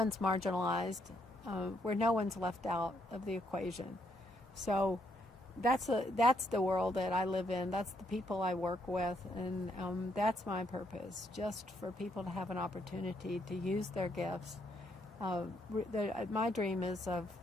marginalized, where no one's left out of the equation. So that's the world that I live in. That's the people I work with, and that's my purpose, just for people to have an opportunity to use their gifts. My dream is of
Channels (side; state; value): both; normal; correlation 0.74